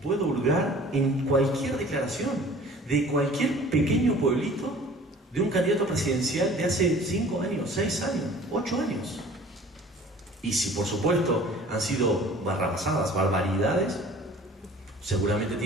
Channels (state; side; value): normal; both; correlation 0.47